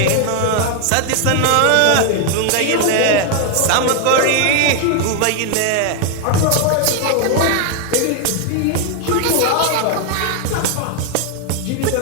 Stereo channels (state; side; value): different; both; correlation 0.01